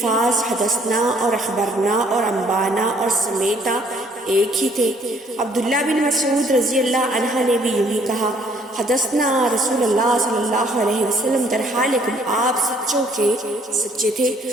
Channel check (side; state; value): both; normal; correlation 0.62